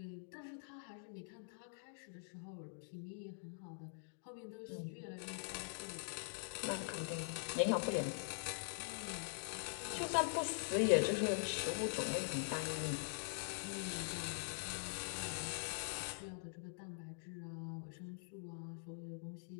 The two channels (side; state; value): right; silent; digital silence